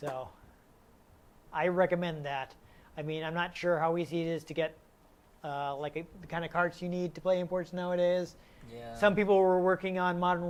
I recommend that. I mean, I'm not sure how easy it is to get the kind of carts you need to play imports nowadays. Yeah. Some people were working on modern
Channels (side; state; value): both; identical; correlation 1.00